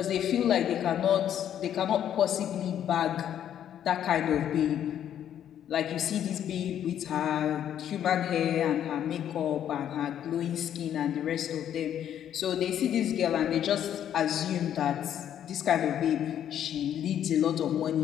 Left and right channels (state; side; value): quieter; right; 10.1 dB